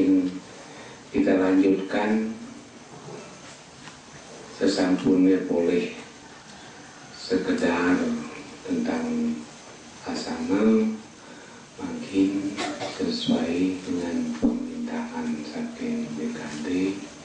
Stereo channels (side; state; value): both; identical; correlation 1.00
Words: kita lanjutkan sesampunnya boleh sekedar tentang asana, mungkin sesuai dengan permintaan saking BKD